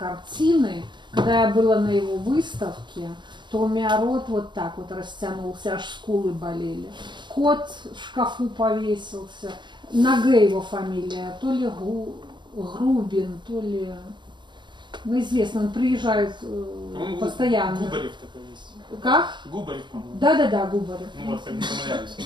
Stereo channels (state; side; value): late; left; 0.22 ms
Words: Когда я была на его выставке, то у меня рот вот так вот растянулся, аж скулы болели. Кот в шкафу повесился. На Г его фамилия, то ли Грубин, то ли... Ну, известно, он приезжает постоянно. Губарев такой есть. Как? Губарев, по-моему. Да, Губарев. Ну вот, как не помыляюсь.